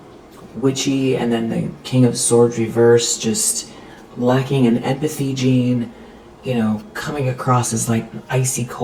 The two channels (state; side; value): identical; both; correlation 1.00